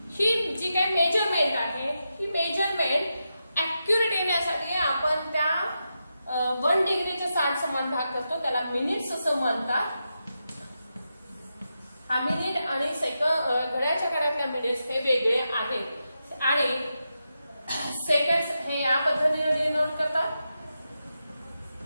ही जी काही मेजरमेंट आहे ही मेजरमेंट ऍक्युरेट येण्यासाठी आपण त्या 1 डिग्रीचे 60 समान भाग करतो, त्याला मिनिट्स असं म्हणतात. आणि घड्याळाच्या काळातल्या मिनिट्स हे वेगळे आहेत आणि सेकंड्स हे या पद्धतीने डिनोट करतात.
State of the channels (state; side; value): inverted; both; correlation -0.88